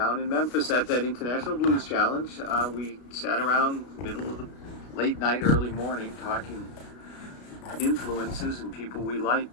in Memphis at that International Blues Challenge. We sat around middle of the late night, early morning, talking influences and people we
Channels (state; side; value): late; right; 33 ms